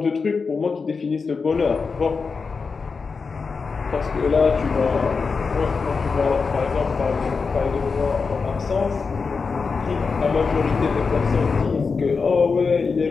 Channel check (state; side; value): quieter; right; 4.9 dB